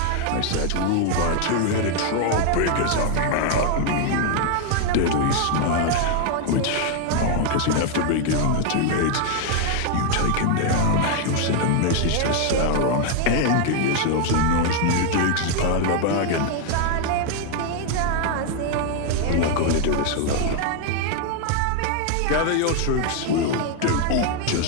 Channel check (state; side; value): different; both; correlation 0.00